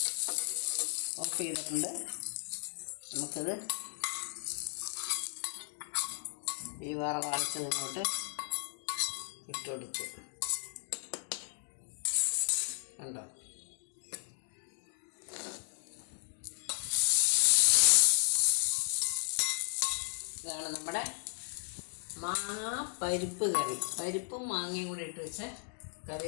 ഓഫ് ചെയ്തിട്ടുണ്ട്. നമുക്കിത് ഈ വറവരച്ചത് ഇങ്ങോട്ട് ഇട്ട് കൊടുത്തു. കണ്ടോ, ഇതാണ് നമ്മുടെ മാങ്ങ പരിപ്പ് കറി. പരിപ്പും മാങ്ങയും കൂടി ഇട്ട് വെച്ച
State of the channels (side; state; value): right; silent; digital silence